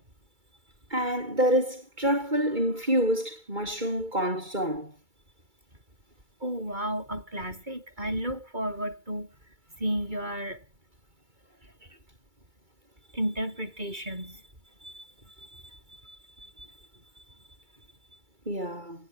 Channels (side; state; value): left; late; 2.3 ms